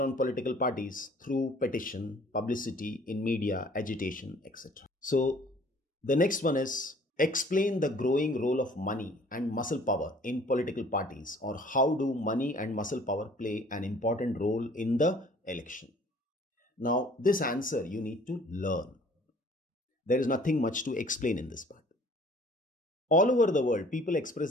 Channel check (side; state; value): both; normal; correlation 0.53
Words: political parties through petition, publicity in media, agitation, etc. So the next one is explain the growing role of money and muscle power in political parties, or how do money and muscle power play an important role in the election. Now, this answer you need to learn. There is nothing much to explain in this part. All over the world, people